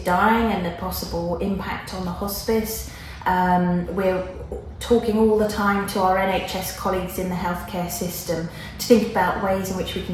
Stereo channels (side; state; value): both; identical; correlation 1.00